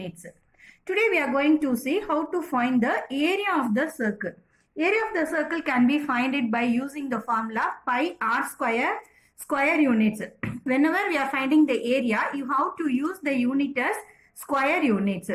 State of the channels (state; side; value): identical; both; correlation 1.00